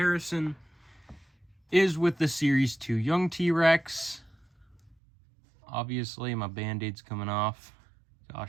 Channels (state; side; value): drops out; left; at 5.0 s